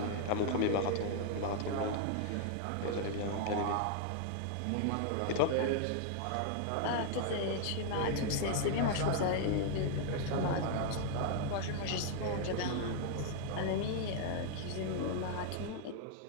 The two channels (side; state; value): both; different; correlation 0.00